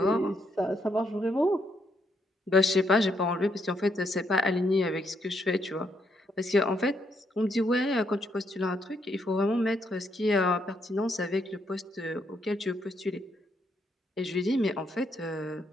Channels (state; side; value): normal; both; correlation 0.75